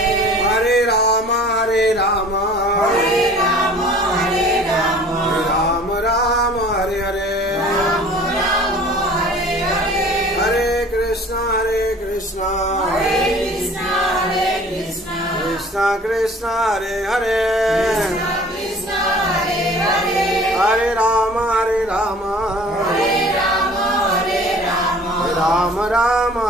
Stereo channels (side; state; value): both; normal; correlation 0.47